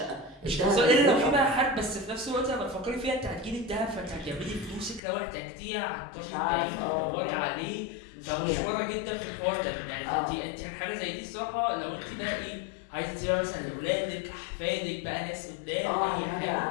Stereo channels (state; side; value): drops out; right; at 5.0 s